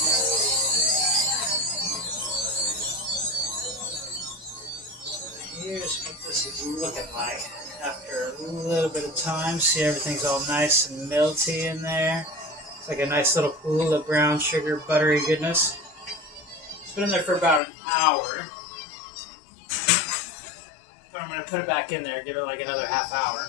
Here's what this is looking like after a little bit of time. See, everything's all nice and melty in there. It's like a nice little pool of brown sugar, buttery goodness. It's been in there for about an hour. But I'm going to put it back in there, give it like another half hour.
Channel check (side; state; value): right; drops out; at 17.6 s